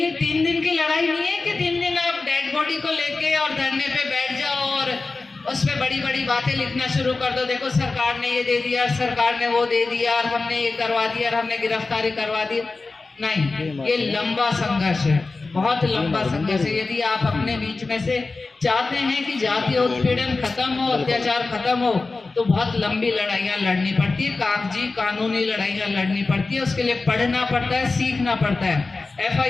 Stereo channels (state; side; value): quieter; right; 3.7 dB